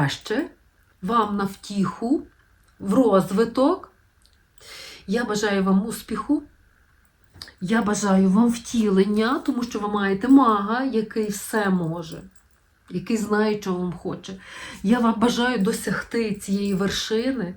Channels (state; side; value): identical; both; correlation 1.00